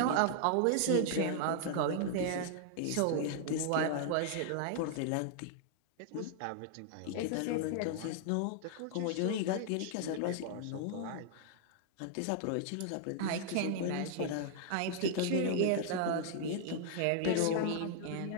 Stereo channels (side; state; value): both; different; correlation -0.01